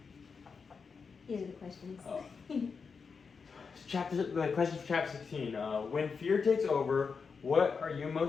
These are the questions. Oh. The question for chapter 16. When fear takes over, what are you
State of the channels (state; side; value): quieter; right; 5.4 dB